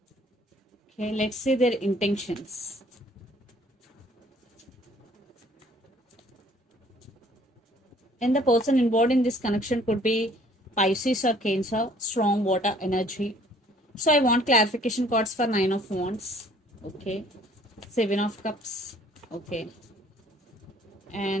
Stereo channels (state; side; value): normal; both; correlation 0.58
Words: Okay, let's see their intentions. And the person involved in this connection could be Pisces or Cancer, strong water energy. So I want clarification cards for Nine of Wands. Okay. Seven of Cups. Okay.